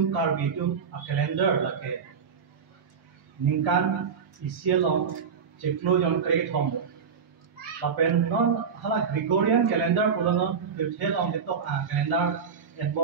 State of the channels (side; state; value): left; quieter; 6.3 dB